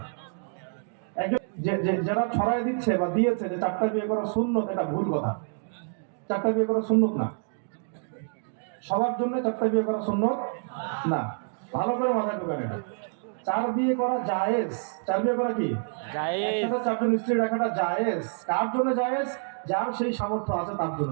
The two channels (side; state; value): left; silent; 60 dB below the other